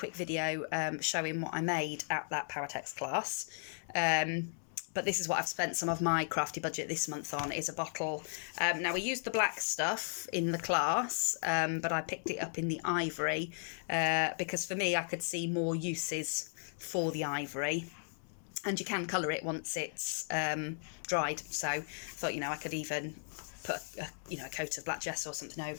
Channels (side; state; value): right; silent; 54 dB below the other